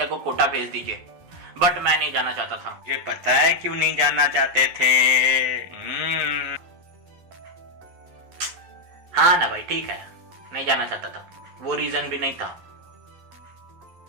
को कोटा भेज दीजिए। बट मैं नहीं जाना चाहता था। मुझे पता है क्यों नहीं जाना चाहते थे। हाँ ना भाई, ठीक है, नहीं जाना चाहता था। वो रीजन भी नहीं था।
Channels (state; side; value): late; left; 11 ms